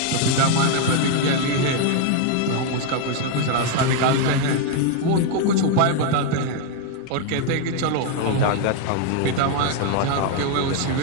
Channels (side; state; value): both; different; correlation 0.00